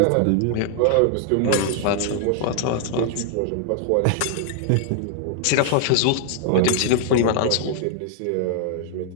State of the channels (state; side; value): different; both; correlation 0.00